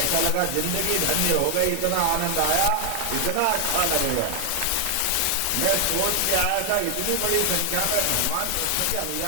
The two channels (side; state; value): both; different; correlation 0.00